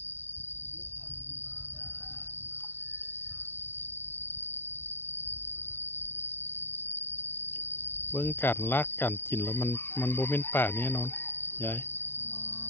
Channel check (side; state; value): right; late; 0.11 ms